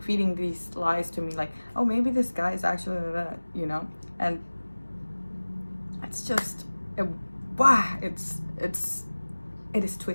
feeding these lies to me, like, oh, maybe this guy is actually that, you know. And it's just it is too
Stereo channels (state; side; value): inverted; both; correlation -1.00